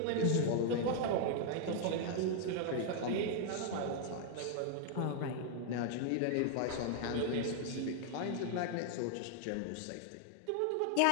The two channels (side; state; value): both; different; correlation 0.00